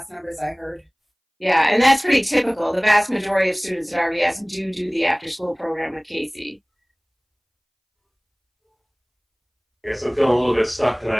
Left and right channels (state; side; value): identical; both; correlation 1.00